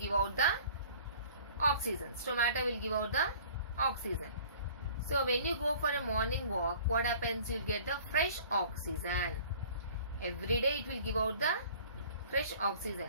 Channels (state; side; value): inverted; both; correlation -0.49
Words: out the oxygen. Stomata will give out the oxygen. So when you go for a morning walk, what happens? You will get the fresh oxygen. Every day it will give out the fresh